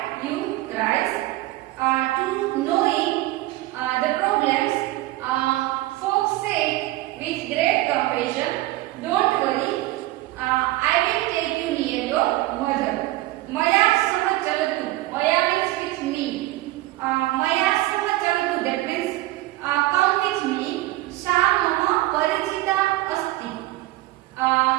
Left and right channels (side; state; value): left; quieter; 17.8 dB